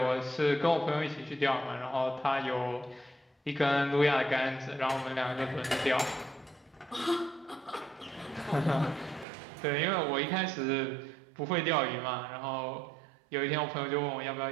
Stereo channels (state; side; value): drops out; left; at 9.2 s